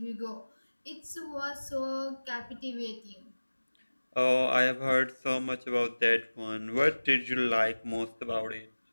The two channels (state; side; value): inverted; both; correlation -1.00